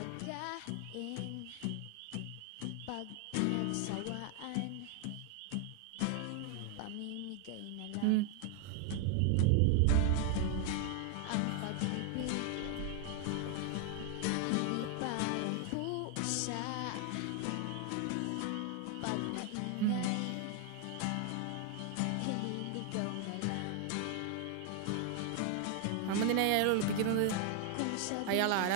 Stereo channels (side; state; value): both; different; correlation 0.00